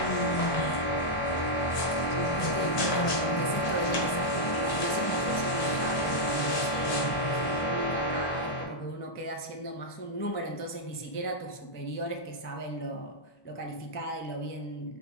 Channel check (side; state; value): right; late; 1.2 ms